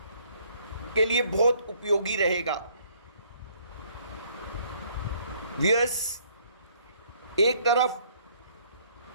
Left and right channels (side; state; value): both; inverted; correlation -0.62